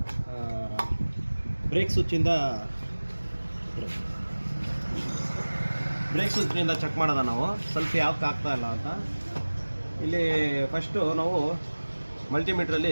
ಬ್ರೇಕ್ ಸ್ವಿಚ್ಚಿಂದ ಚೆಕ್ ಮಾಡೋದ ನಾವು ಸ್ವಲ್ಪ ಯಾಕೆ ಆಗ್ತಾ ಇಲ್ಲ ಅಂತ. ಇಲ್ಲಿ ಫಸ್ಟು ನಾವು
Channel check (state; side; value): inverted; both; correlation -1.00